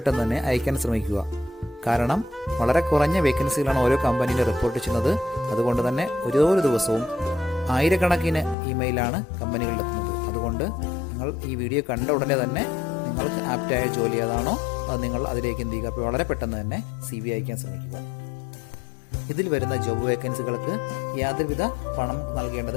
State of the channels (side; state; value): right; drops out; at 8.6 s